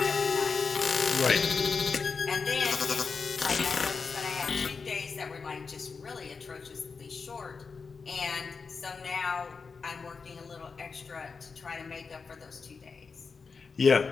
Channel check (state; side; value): quieter; right; 5.0 dB